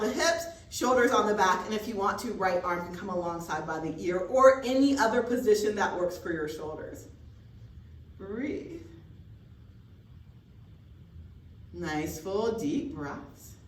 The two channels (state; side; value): identical; both; correlation 1.00